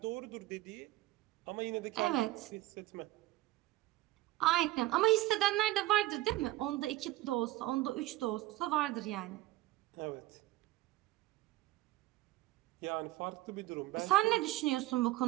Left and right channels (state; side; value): quieter; left; 16.8 dB